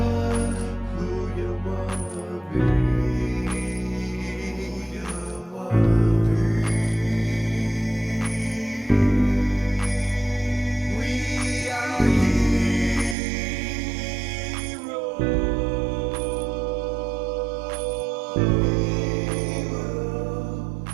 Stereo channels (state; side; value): drops out; left; at 13.2 s